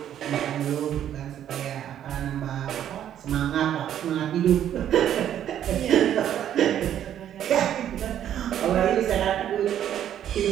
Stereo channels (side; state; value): left; quieter; 10.5 dB